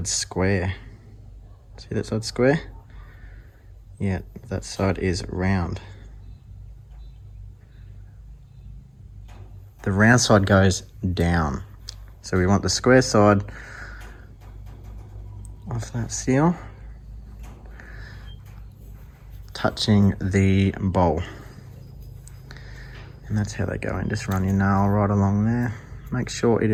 square. See that side square? Yeah, that side is round. The round side goes down. So we want the square side of that seal touching the bowl. And that's how they go in. Just run your nail right along there. Make sure it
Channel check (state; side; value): identical; both; correlation 1.00